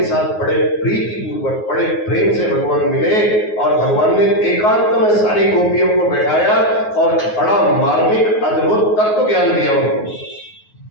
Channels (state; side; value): late; right; 9.4 ms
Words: साथ बड़े प्रीति पूर्वक, बड़े प्रेम से भगवान मिले और भगवान ने एकांत में सारी गोपियों को बैठाया और बड़ा मार्मिक अद्भुत तत्व ज्ञान दिया उनको,